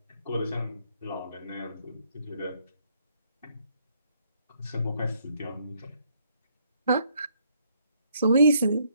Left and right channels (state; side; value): inverted; both; correlation -0.70